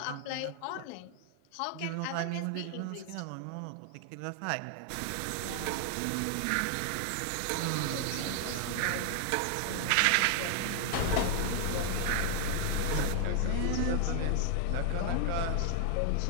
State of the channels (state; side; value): different; both; correlation 0.00